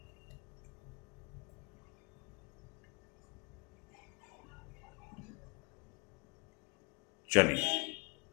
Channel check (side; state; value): right; quieter; 30.8 dB